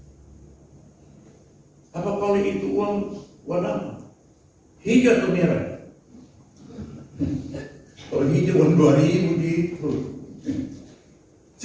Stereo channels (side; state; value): both; identical; correlation 1.00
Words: Apa kalau itu uang warna hijau atau merah? Kalau hijau uang 2.000 gitu.